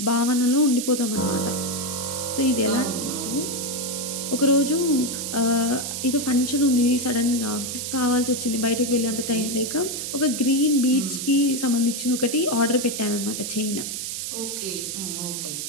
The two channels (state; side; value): noise; right; hiss, 5 dB below the sound